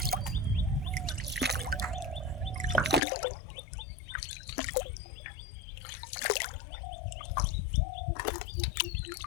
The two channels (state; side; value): drops out; right; at 3.0 s